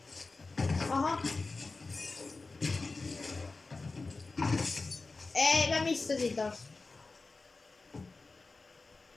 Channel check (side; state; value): right; quieter; 3.7 dB